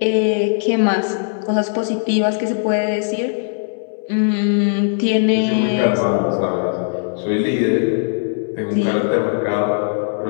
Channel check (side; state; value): right; silent; digital silence